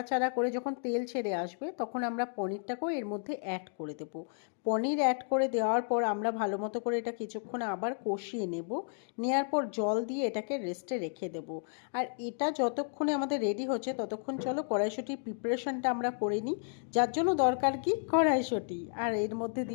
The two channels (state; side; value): silent; right; digital silence